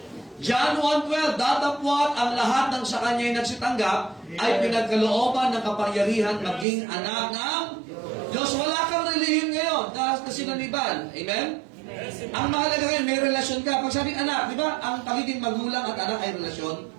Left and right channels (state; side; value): drops out; left; at 6.7 s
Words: John 1:12, datapwat ang lahat ng sa kanya'y nagsitanggap ay pinagkalooban ng kapangyarihan maging anak ng Diyos. Wala kang relihim ngayon na sinaniban. Amen? Ang mahalaga ngayon, may relasyon ka. Pag sabing anak, di ba? Ang pagiging magulang at anak ay relasyon.